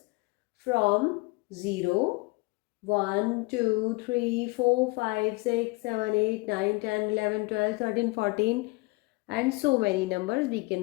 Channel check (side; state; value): right; quieter; 25.5 dB